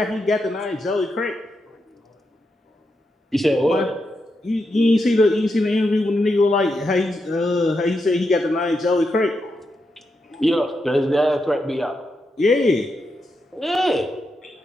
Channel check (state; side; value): normal; both; correlation 0.85